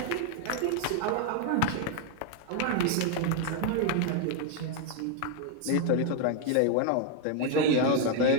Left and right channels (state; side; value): different; both; correlation 0.00